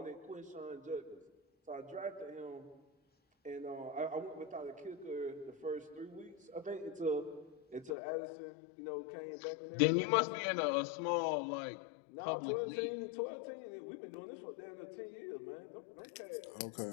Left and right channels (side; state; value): right; drops out; at 8.0 s